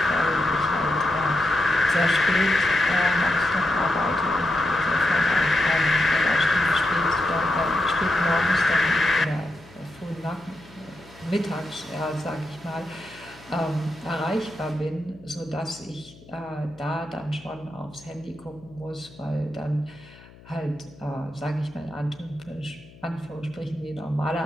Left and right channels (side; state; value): left; noise; hum, 23 dB below the sound